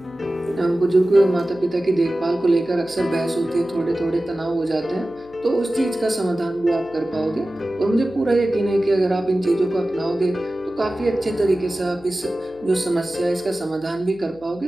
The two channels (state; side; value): noise; left; hum, 24 dB below the sound